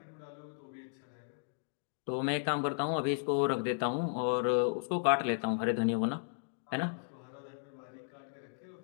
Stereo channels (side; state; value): right; silent; digital silence